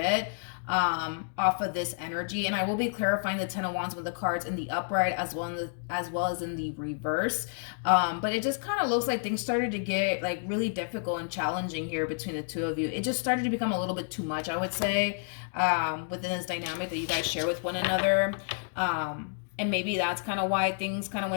off of this energy. And I will be clarifying the Ten of Wands with the cards in the upright as well as in the reverse. But it just kind of looks like things started to get like really difficult and challenging here between the two of you. It just started to become a little bit too much, I would say, within this dynamic that you guys share with one another. And maybe that's kind of why things kind of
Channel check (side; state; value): right; silent; digital silence